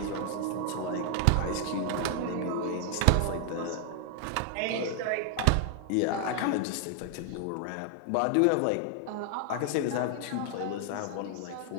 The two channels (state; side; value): different; both; correlation 0.00